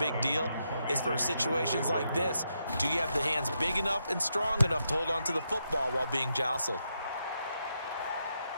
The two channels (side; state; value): both; inverted; correlation -0.82